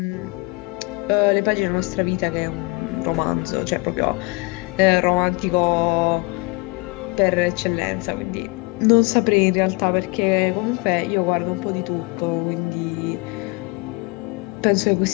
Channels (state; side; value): quieter; right; 27.1 dB